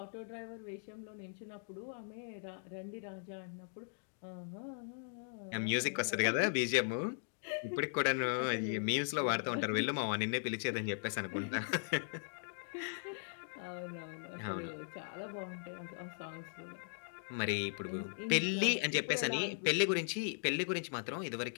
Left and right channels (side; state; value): right; silent; digital silence